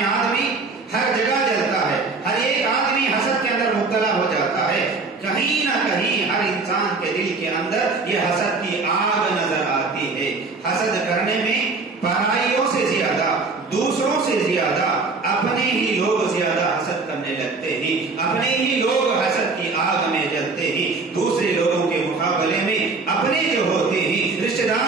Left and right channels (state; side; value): quieter; left; 4.0 dB